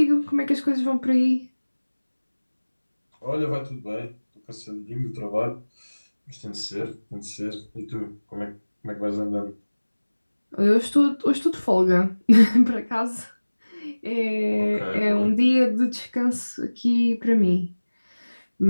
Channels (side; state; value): both; inverted; correlation -1.00